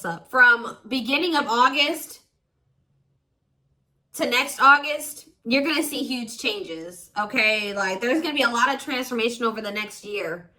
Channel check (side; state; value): both; identical; correlation 1.00